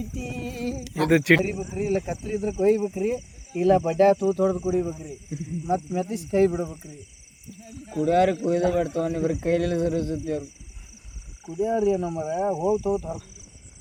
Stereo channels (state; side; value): identical; both; correlation 1.00